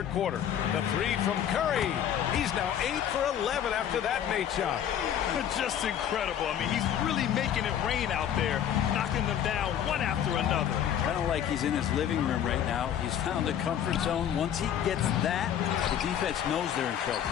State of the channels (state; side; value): quieter; right; 9.7 dB